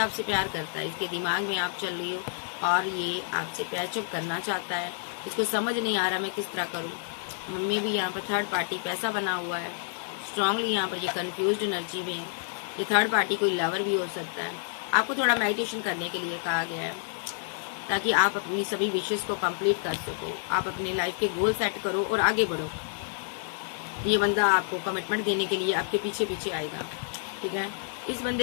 प्यार करता है। इसके दिमाग में आप चल रही हो और ये आपसे पैचअप करना चाहता है। इसको समझ नहीं आ रहा मैं किस तरह करूँ। मम्मी भी यहाँ पर थर्ड पार्टी पैसा बना हुआ है, स्ट्रांगली यहाँ पर ये कन्फ्यूज्ड एनर्जी में है। ये थर्ड पार्टी कोई लवर भी हो सकता है। आपको थोड़ा मेडिटेशन करने के लिए कहा गया है, ताकि आप अपनी सभी विशेष को कंप्लीट कर सको, आप अपनी लाइफ के गोल सेट करो और आगे बढ़ो। ये बंदा आपको कमिटमेंट देने के लिए आपके पीछे पीछे आएगा, ठीक है। इस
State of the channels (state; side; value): silent; right; digital silence